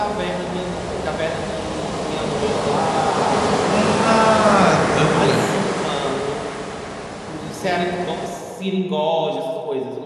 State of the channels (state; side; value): identical; both; correlation 1.00